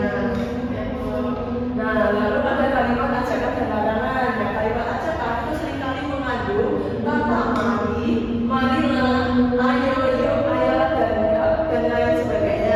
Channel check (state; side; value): identical; both; correlation 1.00